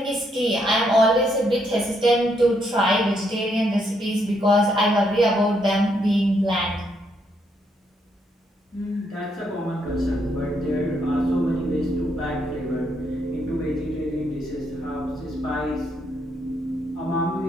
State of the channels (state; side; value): normal; both; correlation 0.75